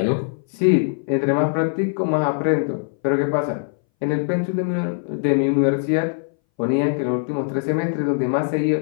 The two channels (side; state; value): right; silent; 61 dB below the other